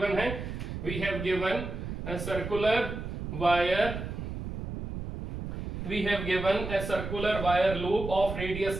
है। We have given a circular wire, we have given a circular wire loop of radius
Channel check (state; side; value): noise; right; rumble, 6 dB below the sound